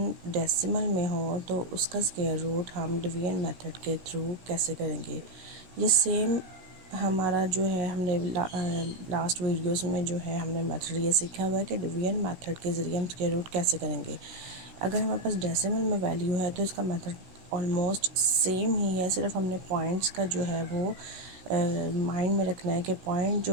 डेसिमल में हो तो उसका स्क्वायर रूट हम डिवीजन मेथड के थ्रू कैसे करेंगे। ये सेम हमारा जो है हमने लास्ट वीडियोस में जो है हमने मेथड ये सीखा हुआ है कि डिवीजन मेथड के ज़रिए हम स्क्वायर रूट कैसे करेंगे। अगर हमारे पास डेसिमल में वैल्यू है तो इसका मेथड ऑलमोस्ट सेम ही है, सिर्फ हमने पॉइंट्स का जो है वो माइंड में रखना है कि पॉइंट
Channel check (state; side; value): late; left; 16 ms